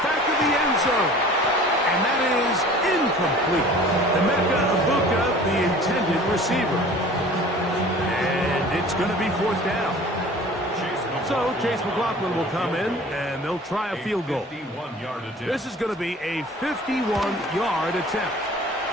to the end zone. And that is incomplete. Emeka Egbuka, the intended receiver. And it's going to be 4th down. So Chase McLaughlin will come in, and they'll try a field goal. This is going to be a 51-yard attempt.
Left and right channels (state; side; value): normal; both; correlation 0.45